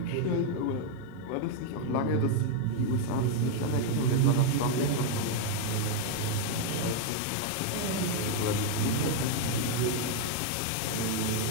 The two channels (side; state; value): both; different; correlation 0.00